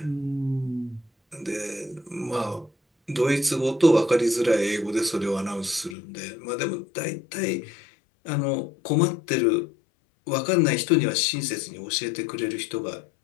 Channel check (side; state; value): right; drops out; at 6.0 s